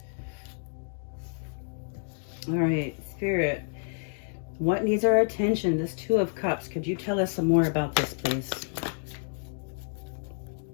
All right, Spirit. What needs our attention? This Two of Cups. Could you tell us some more about this, please?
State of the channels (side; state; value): right; silent; digital silence